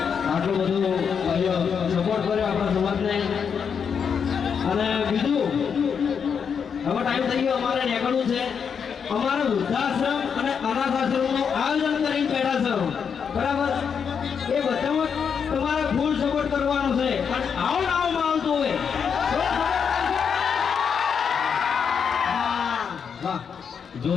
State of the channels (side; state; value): right; quieter; 6.8 dB